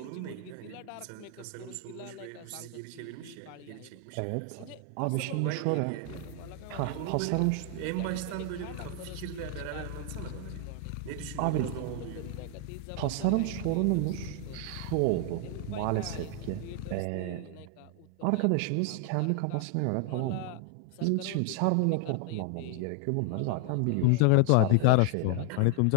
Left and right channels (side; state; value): both; different; correlation 0.00